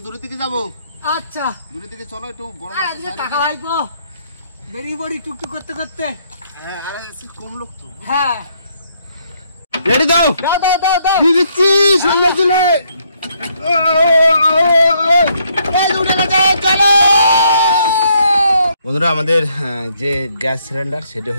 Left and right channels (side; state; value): both; inverted; correlation -0.71